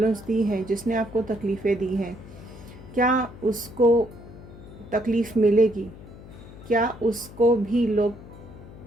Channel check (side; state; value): left; noise; hum, 17 dB below the sound